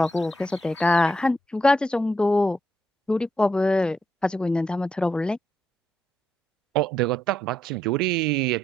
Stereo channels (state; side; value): normal; both; correlation 0.78